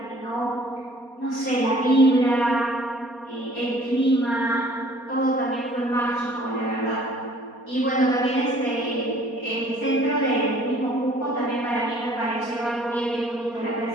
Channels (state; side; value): late; right; 4.2 ms